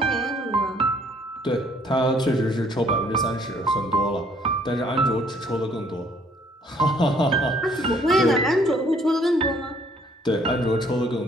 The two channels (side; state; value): both; normal; correlation 0.62